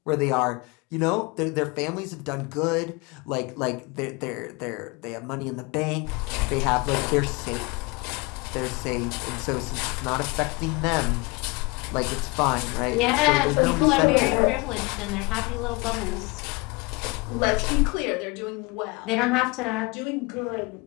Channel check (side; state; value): right; quieter; 26.5 dB